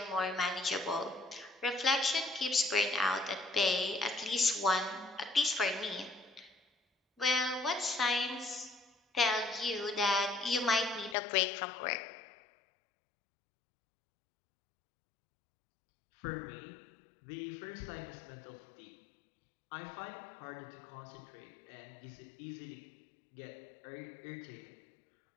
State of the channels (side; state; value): right; drops out; at 11.2 s